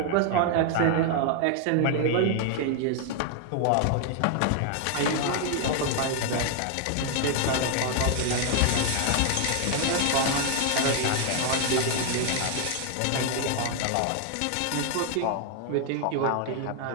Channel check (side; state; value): both; different; correlation 0.00